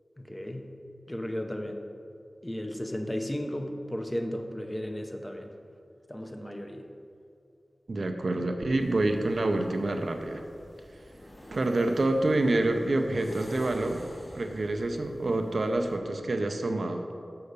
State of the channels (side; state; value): both; normal; correlation 0.96